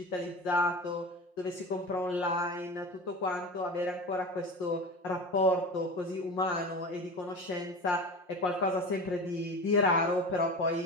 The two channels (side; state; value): right; late; 5.6 ms